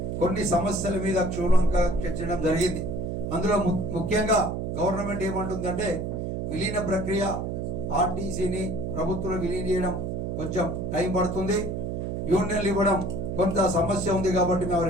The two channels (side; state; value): right; noise; hum, 3 dB below the sound